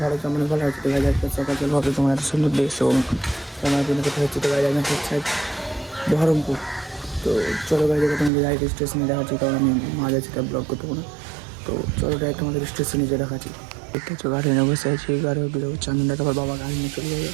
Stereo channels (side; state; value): left; drops out; at 8.3 s